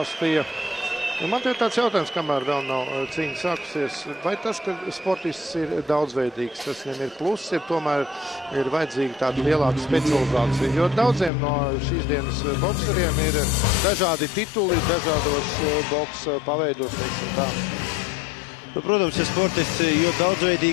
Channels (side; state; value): right; drops out; at 11.3 s